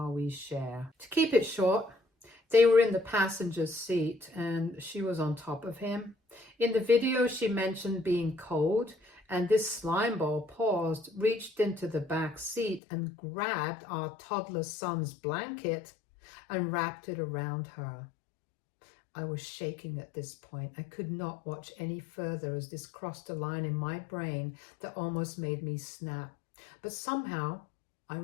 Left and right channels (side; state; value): right; drops out; at 12.8 s